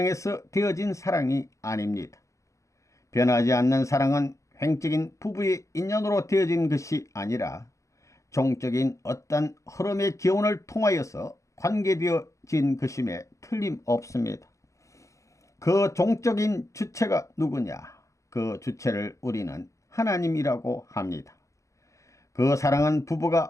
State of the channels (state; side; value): late; right; 0.15 ms